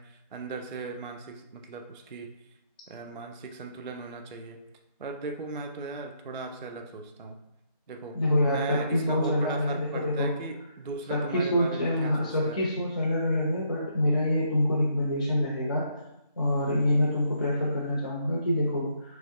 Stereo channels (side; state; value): both; inverted; correlation -0.72